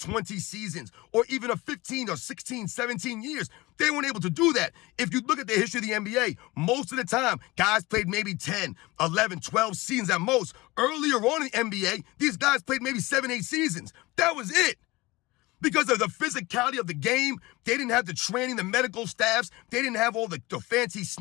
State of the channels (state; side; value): quieter; right; 21.4 dB